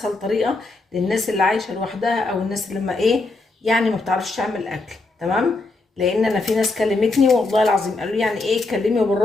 طريقه للناس اللي عايشه لوحدها او الناس اللي ما ايه يعني ما بتعرفش تعمل اكل. تمام، لان انا في ناس كلمتني والله العظيم قالوا لي يعني ايه اتكلمي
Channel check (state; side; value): quieter; right; 3.3 dB